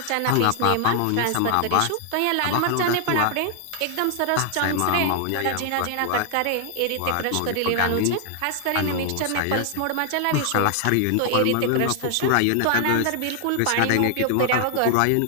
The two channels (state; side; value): different; both; correlation 0.00